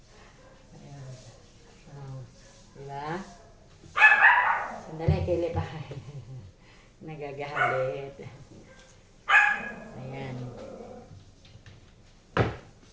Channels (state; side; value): identical; both; correlation 1.00